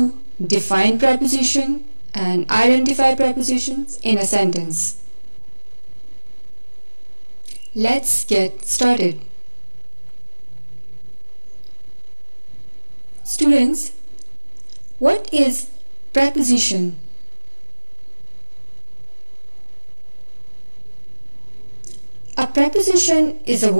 define preposition and identify prepositions in a sentence. Let's get started. Students, what is preposition? A preposition is a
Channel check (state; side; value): inverted; both; correlation -1.00